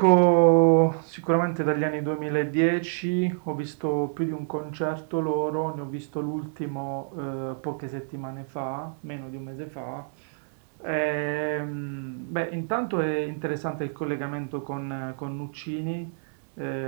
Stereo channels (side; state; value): left; silent; digital silence